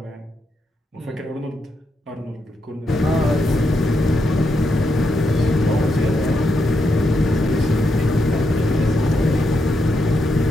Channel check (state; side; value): normal; both; correlation 0.82